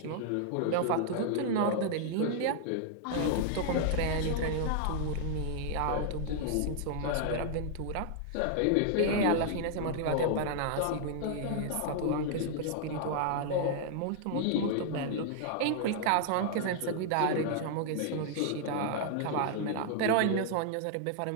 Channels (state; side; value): different; both; correlation 0.00